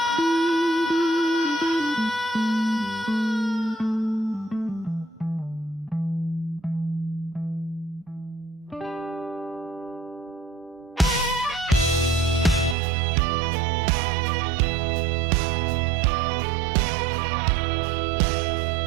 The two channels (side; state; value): left; drops out; at 12.8 s